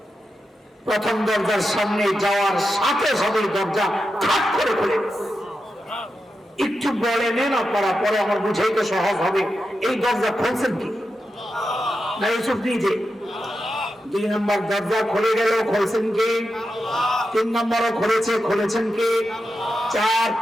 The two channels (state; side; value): normal; both; correlation 0.89